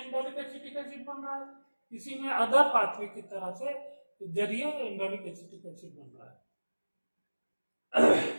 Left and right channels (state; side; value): inverted; both; correlation -1.00